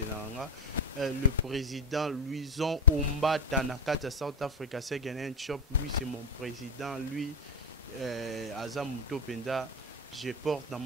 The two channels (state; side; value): normal; both; correlation 0.09